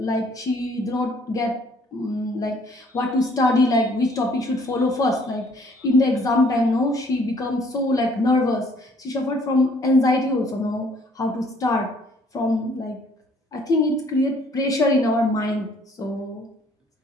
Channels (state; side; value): normal; both; correlation 0.61